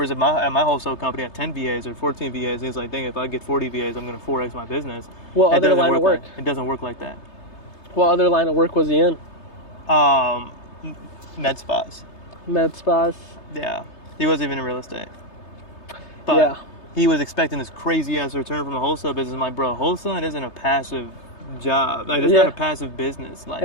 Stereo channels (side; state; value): right; late; 3.3 ms